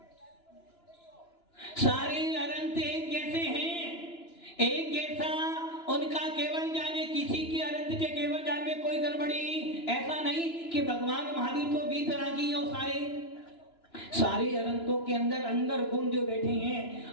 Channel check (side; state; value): right; late; 2.9 ms